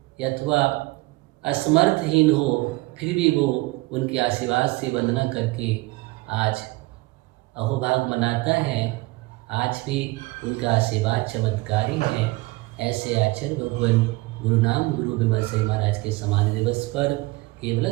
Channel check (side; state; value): left; quieter; 22.2 dB